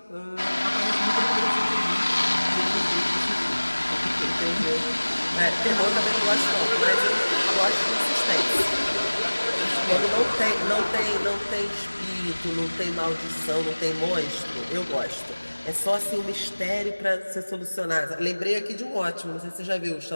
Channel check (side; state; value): both; inverted; correlation -1.00